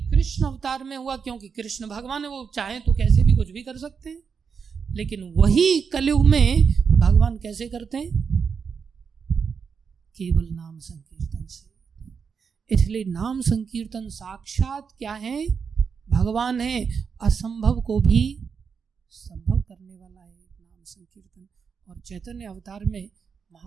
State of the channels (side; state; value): left; quieter; 6.1 dB